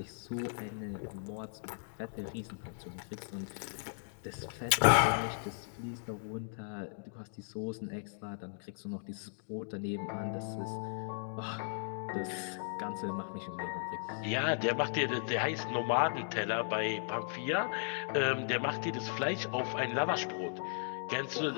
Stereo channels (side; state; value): right; silent; digital silence